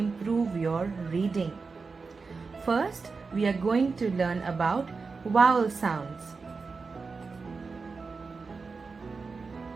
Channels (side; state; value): left; quieter; 4.5 dB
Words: your reading. First, we are going to learn about vowel sounds.